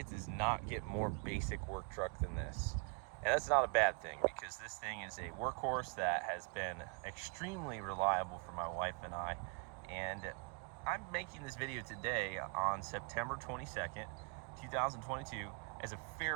does not get more basic work truck than this. And that's not a bad thing, because this thing is a workhorse that has been extremely reliable for my wife and I. And I'm making this video today on September 22nd, 2022 as a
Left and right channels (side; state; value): left; quieter; 34.0 dB